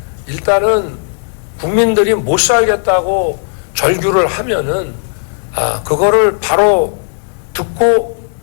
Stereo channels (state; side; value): silent; right; digital silence